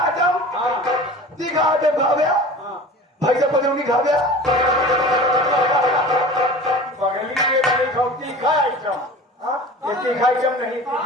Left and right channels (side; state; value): both; normal; correlation 0.38